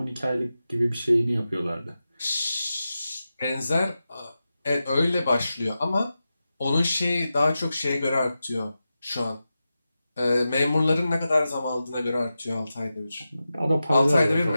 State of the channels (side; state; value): both; inverted; correlation -0.92